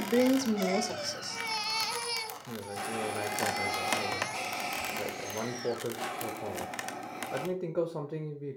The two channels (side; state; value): both; identical; correlation 1.00